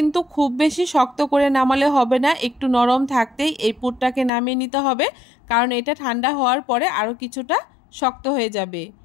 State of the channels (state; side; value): drops out; right; at 4.3 s